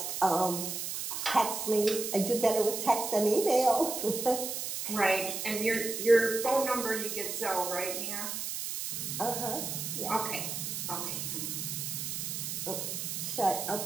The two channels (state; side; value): noise; right; hiss, 4 dB below the sound